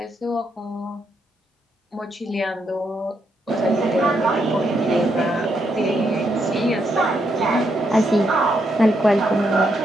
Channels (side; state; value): both; normal; correlation 0.78